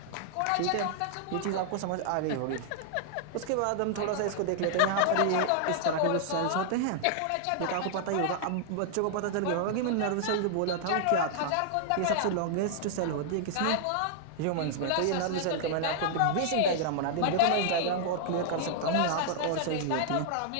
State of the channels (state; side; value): different; both; correlation -0.01